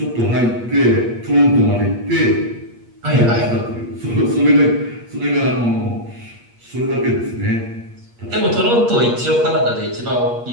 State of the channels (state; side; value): late; left; 8.5 ms